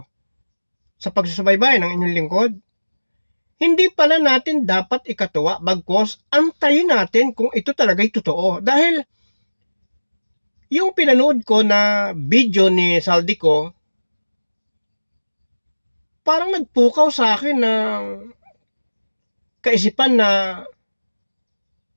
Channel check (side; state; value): both; inverted; correlation -1.00